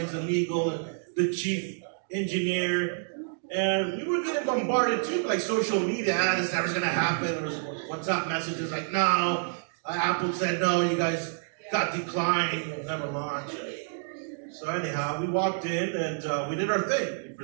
and legal, and the chief engineer. And we were getting bombarded too, like social media. This never's gonna happen. There was WhatsApp messages like, no, Apple said no, you guys got declined, you'll never launch. So anyhow, we walked in and we did our thing. We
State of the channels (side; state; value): left; silent; digital silence